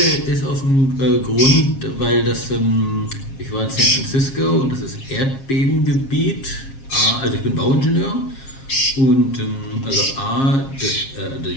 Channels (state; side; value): late; right; 7.4 ms